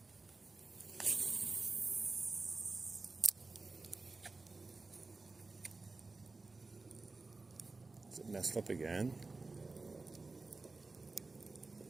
Is it messed up again?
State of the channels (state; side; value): quieter; left; 3.7 dB